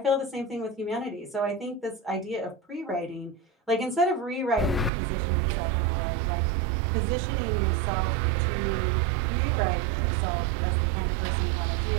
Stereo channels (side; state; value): left; drops out; at 4.9 s